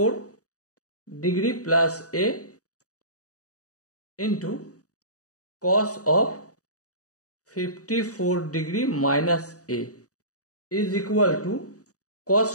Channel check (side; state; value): right; late; 0.66 ms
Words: degree plus a into cos of 54 degree minus a is equal to cos